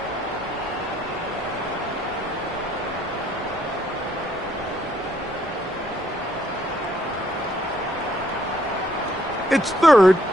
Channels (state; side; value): normal; both; correlation 0.68